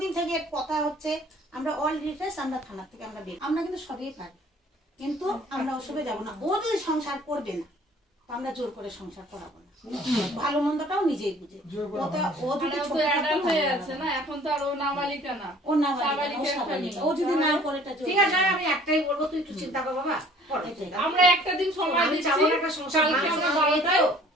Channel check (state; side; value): normal; both; correlation 0.53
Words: থেকে এর কথা হচ্ছে আমরা অল ডিটেলস আমরা থানা থেকে আমরা বের আমরা কিন্তু সবই পারি কিন্তু আমরা ওসবে যাব না ও যদি সংসার করবে না তো আমরা জোর করে সংসার করাবো না ভালো মন্দটাও নিজেই বুঝে জোর করে ও যদি আর ও ছোট তো অ্যাডাল্ট হয়ে আছে না, এখন তো আর ও নাবালিকা না। ও না ও যদি না করে এটা ঠিক আছে আমি একটাই বলবো তুই একটু চিন্তা কর বাবা, কর। আমরা একটা দিন সময় আমি দিচ্ছি, চাবো না একটা সংসার কালকে আমরা ভাঙছে, 12টায়